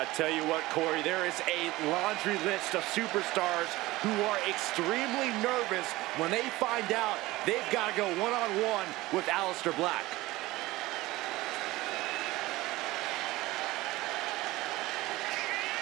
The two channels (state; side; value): quieter; left; 18.9 dB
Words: tell you what, Corey, there is a laundry list of superstars who are extremely nervous when they find out they've got to go one-on-one with Aleister Black.